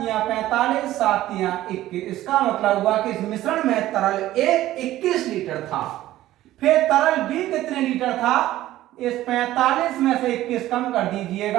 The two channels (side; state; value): left; quieter; 14.8 dB